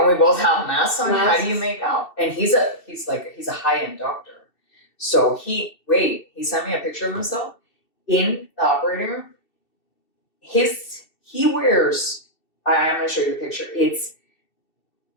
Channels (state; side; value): late; right; 2.7 ms